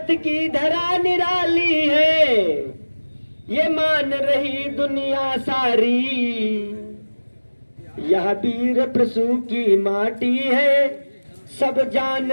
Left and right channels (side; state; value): both; inverted; correlation -1.00